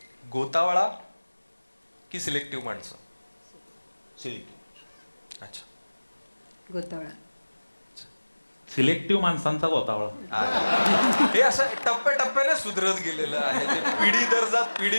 गोतावळा की सिलेक्टिव्ह माणसं? सिलेक्टिव्ह. अच्छा. गोतावळा. सिलेक्टिव्ह माणसांचा गोतावळा. हे असं टप्प्याटप्प्याने सुधरत गेलेलं आहे. ते पिढी दर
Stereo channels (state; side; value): inverted; both; correlation -1.00